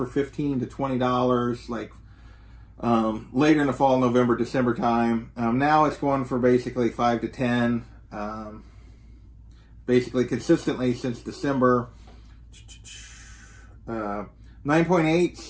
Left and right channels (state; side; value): identical; both; correlation 1.00